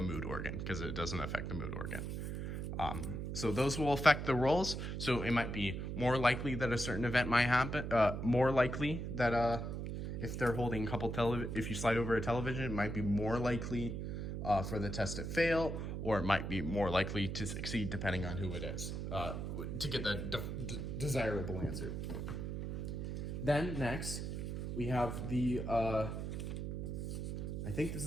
mood organ, because it doesn't affect the mood organ. So those will affect the rolls. So it might be more likely that a certain event might happen. More likely that if they're holding a couple if you slide over a television, it might be more likely for the test to fail, or it might be more likely to succeed depending on who it is, to get the desirable answer. Then next, we have the, I think this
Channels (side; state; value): right; noise; hum, 4 dB below the sound